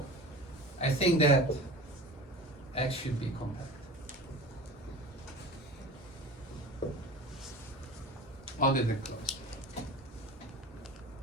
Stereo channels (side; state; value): both; normal; correlation 0.35